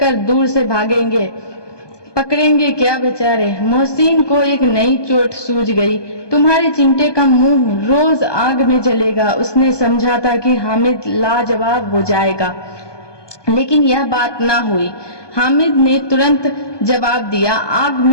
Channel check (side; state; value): right; late; 1.2 ms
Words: दूर से भागेंगे। पकड़ेंगे क्या बेचारे? मोहसिन को एक नई चोट सूझ गई। तुम्हारे चिमटे का मुंह रोज आग में जलेगा। उसने समझा था कि हामिद लाजवाब हो जाएगा, लेकिन यह बात ना हुई। हामिद ने तुरंत जवाब दिया, आग